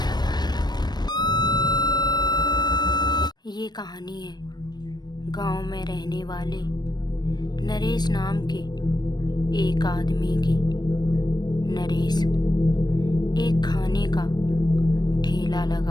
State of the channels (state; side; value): late; right; 0.20 ms